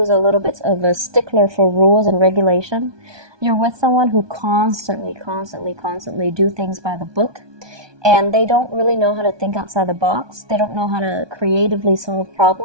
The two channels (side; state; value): left; late; 1.2 ms